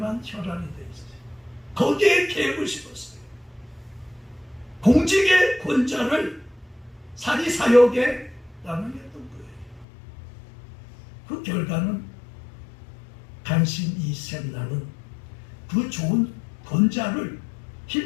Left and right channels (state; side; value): drops out; right; at 9.9 s